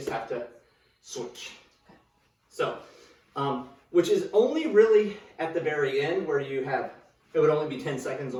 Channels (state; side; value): identical; both; correlation 1.00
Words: have to switch. Okay. So, which is only really at the very end where you have, it would only be 10 seconds